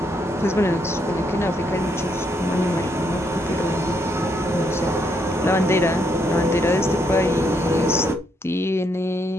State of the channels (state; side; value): normal; both; correlation 0.75